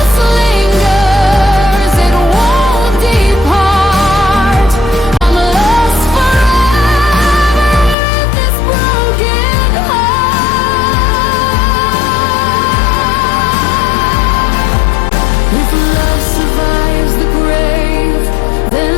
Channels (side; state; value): right; drops out; at 8.0 s